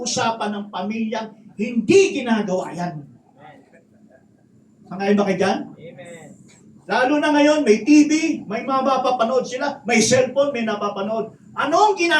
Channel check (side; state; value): both; identical; correlation 1.00